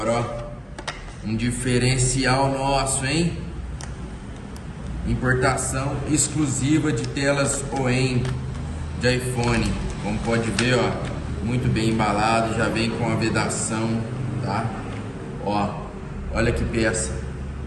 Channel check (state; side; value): identical; both; correlation 1.00